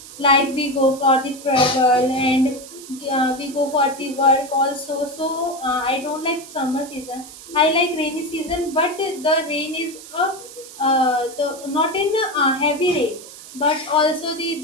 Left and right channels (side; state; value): right; noise; hiss, 16 dB below the sound